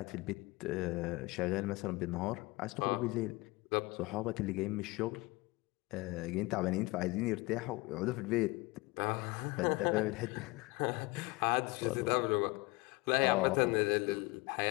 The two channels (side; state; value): right; quieter; 23.7 dB